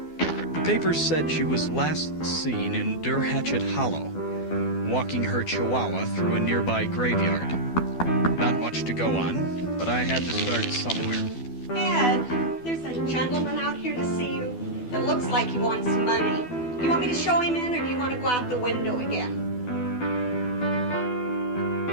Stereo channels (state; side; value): late; right; 12 ms